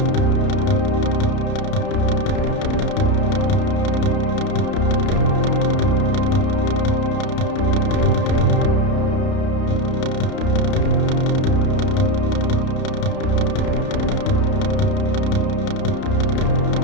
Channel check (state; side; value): late; right; 31 ms